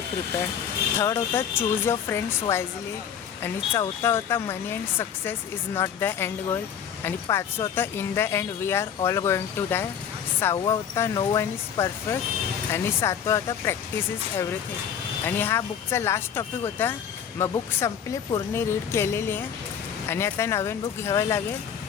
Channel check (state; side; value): quieter; right; 8.3 dB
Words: प्रिपेअर्ड. थर्ड होता चूज युअर फ्रेंड्स वाईजली. आणि चौथा होता money and success is not the end goal. आणि 5 होता in the end we are all going to die. 6 होता नो वन इज परफेक्ट. आणि 7 होता प्रॅक्टिस इज एव्हरीथिंग. आणि हा बुकचा लास्ट टॉपिक होता. मग बुक संपली, पूर्ण रीड केलेली आहे आणि आता नवीन बुक घ्यावं लागेल.